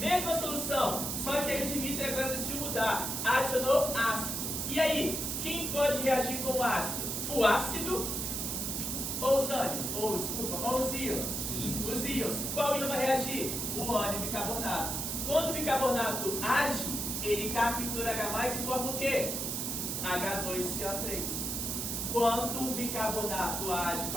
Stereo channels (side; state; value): right; noise; hiss, 2 dB below the sound